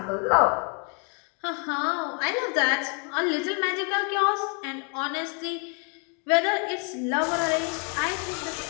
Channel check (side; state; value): right; quieter; 37.8 dB